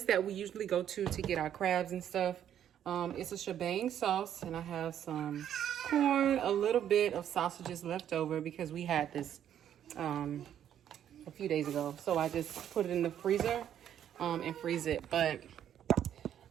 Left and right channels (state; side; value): quieter; left; 10.1 dB